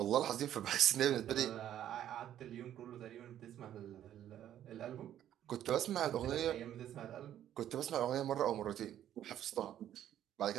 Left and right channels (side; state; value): left; quieter; 11.2 dB